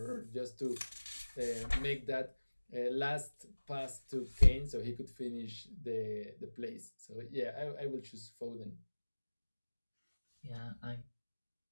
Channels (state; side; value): inverted; both; correlation -1.00